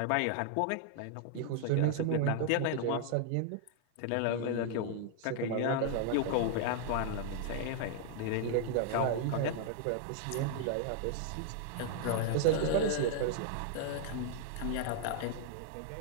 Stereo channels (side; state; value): both; different; correlation -0.01